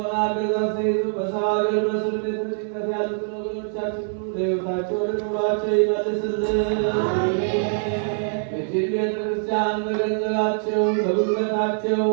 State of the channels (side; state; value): left; silent; 63 dB below the other